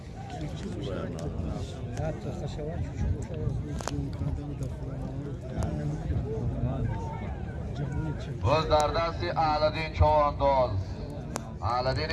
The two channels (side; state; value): both; identical; correlation 1.00